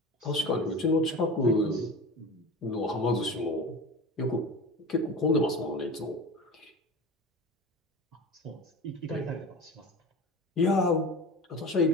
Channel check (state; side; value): normal; both; correlation 0.32